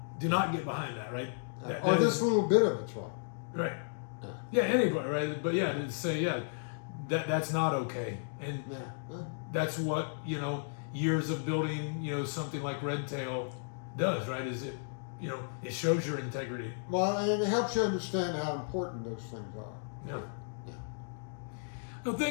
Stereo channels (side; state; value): right; silent; digital silence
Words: Do not get behind that, right? Or this little bit of it's wrong. Right. Yeah, anybody, right? But yeah, to say, that's not okay. And that's what, years of building, something like Red Tail does, right? Is it, it shows your integrity. Well, and it helps you understand how important those things are. Yeah. Yeah. Well,